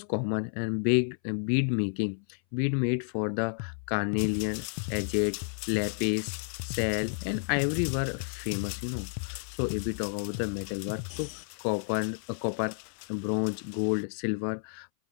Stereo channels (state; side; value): silent; right; 57 dB below the other